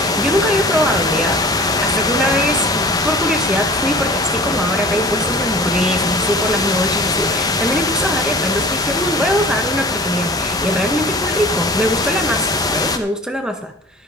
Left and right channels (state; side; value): normal; both; correlation 0.42